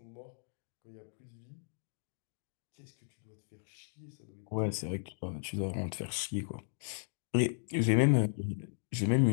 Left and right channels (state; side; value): silent; right; digital silence